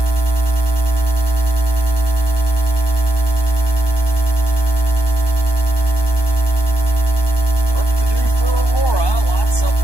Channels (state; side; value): late; right; 1.2 ms